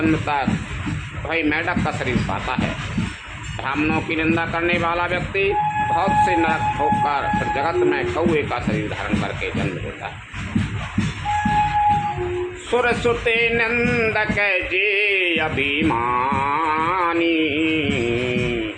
तक वही मेढक का शरीर पाता है। ब्राह्मणों की निंदा करने वाला व्यक्ति बहुत से नरक ठोककर फिर जगत में कौए का शरीर धारण करके जन्म लेता है। सुर सुते नंदक जे अभिमानी,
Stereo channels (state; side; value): identical; both; correlation 1.00